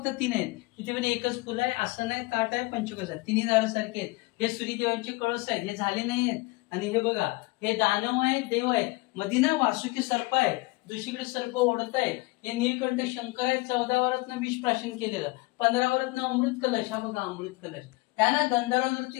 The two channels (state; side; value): quieter; right; 23.5 dB